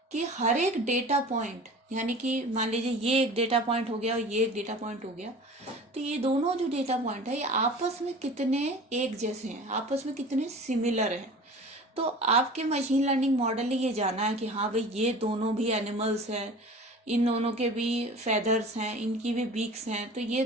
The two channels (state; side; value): normal; both; correlation 0.39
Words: कि हर एक डेटा पॉइंट, यानी कि मान लीजिए ये एक डेटा पॉइंट हो गया और ये एक डेटा पॉइंट हो गया, तो ये दोनों जो डेटा पॉइंट है ये आपस में कितने एक जैसे हैं, आपस में कितने सिमिलर हैं। तो आपके मशीन लर्निंग मॉडल ने ये जाना है कि हाँ भाई, ये दोनों भी एनिमल्स हैं, इन दोनों के भी फेदर्स हैं, इनकी भी बीक्स हैं, तो ये